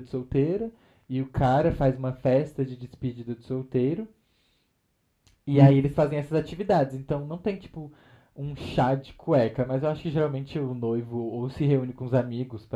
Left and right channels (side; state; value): both; identical; correlation 1.00